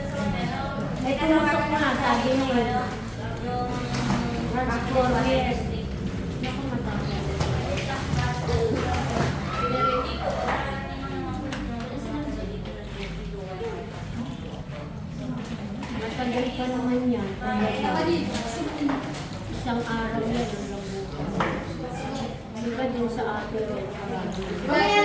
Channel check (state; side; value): identical; both; correlation 1.00